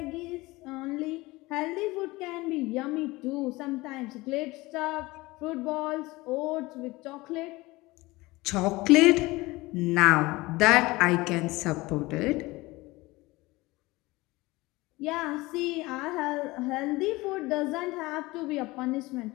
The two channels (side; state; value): right; quieter; 21.2 dB